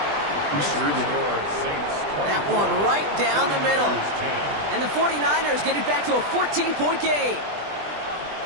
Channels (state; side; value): late; left; 20 ms